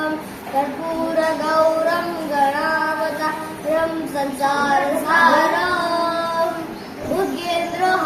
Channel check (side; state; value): both; identical; correlation 1.00